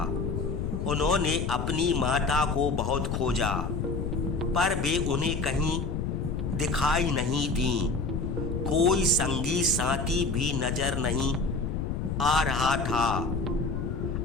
उन्होंने अपनी माता को बहुत खोजा, पर वे उन्हें कहीं दिखाई नहीं दी। कोई संगी साथी भी नजर नहीं आ रहा था।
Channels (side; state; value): left; noise; rumble, 2 dB below the sound